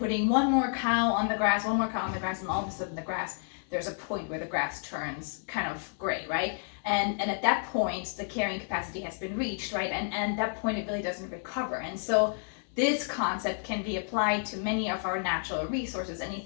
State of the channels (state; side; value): silent; right; 57 dB below the other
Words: one more cow on the grass, and all of a sudden the grass, there's a point where the grass turns kind of gray, right? And at that point, the carrying capacity has been reached, right? And at that point, it really doesn't recover. And so this concept can be applied to many of our natural resources,